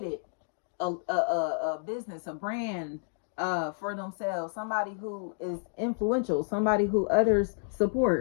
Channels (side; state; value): right; silent; digital silence